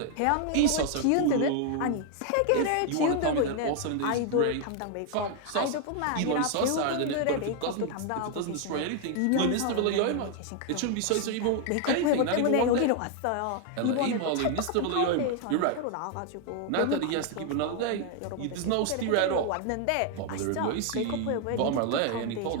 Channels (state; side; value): different; both; correlation 0.00